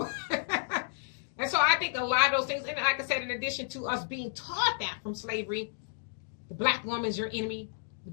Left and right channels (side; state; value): right; silent; digital silence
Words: And so I think a lot of those things, and like I said, in addition to us being taught that from slavery, the black woman is your enemy, the